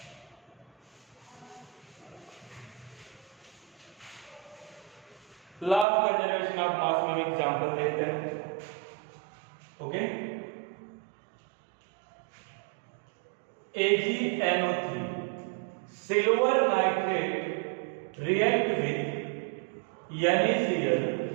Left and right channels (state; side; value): drops out; left; at 5.9 s